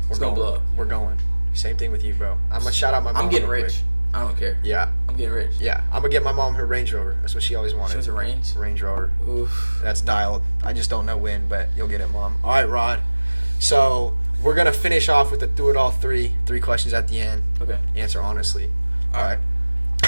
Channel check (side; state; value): both; inverted; correlation -1.00